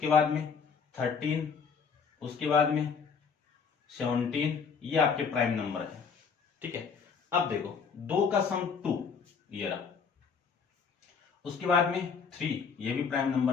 बाद में 13, उसके बाद में 17, ये आपके प्राइम नंबर है। ठीक है, अब देखो 2 का सम 2 ये रहा, उसके बाद में 3 ये भी प्राइम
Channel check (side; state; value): right; quieter; 5.9 dB